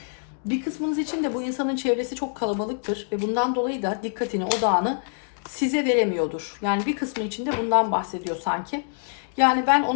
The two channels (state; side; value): silent; right; digital silence